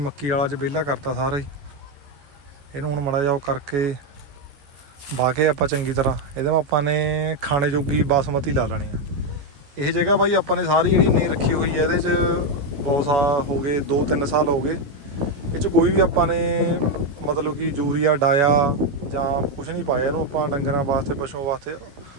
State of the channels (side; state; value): left; late; 14 ms